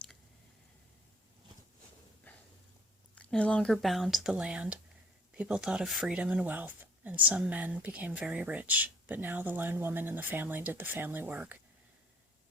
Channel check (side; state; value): both; normal; correlation 0.57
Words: No longer bound to the land, people thought of freedom and wealth, and some men became very rich, but now the lone woman in the family did the family work,